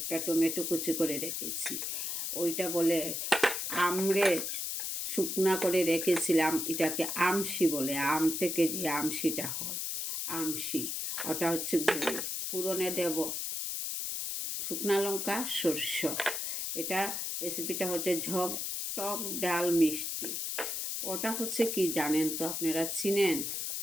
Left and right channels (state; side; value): noise; left; hiss, 2 dB below the sound